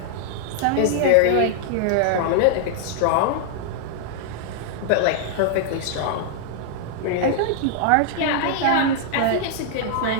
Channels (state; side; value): different; both; correlation -0.01